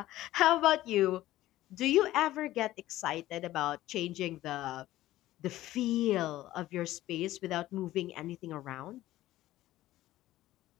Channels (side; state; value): right; quieter; 15.3 dB